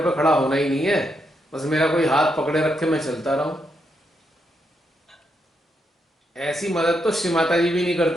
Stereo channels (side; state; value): both; normal; correlation 0.80